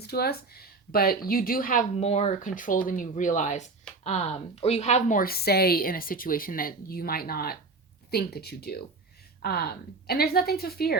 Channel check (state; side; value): quieter; left; 3.8 dB